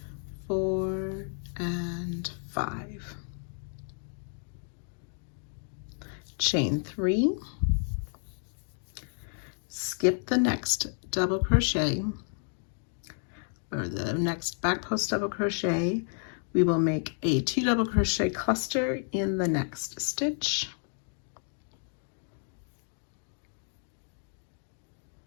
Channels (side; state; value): right; silent; 57 dB below the other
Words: Four and 5. Chain 3, skip the next double crochet or the next back post double crochet. We will make a 2 double crochet cluster in the next stitch.